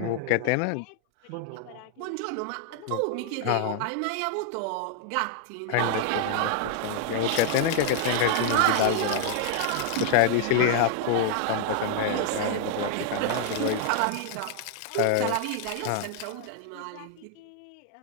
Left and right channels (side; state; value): both; different; correlation 0.00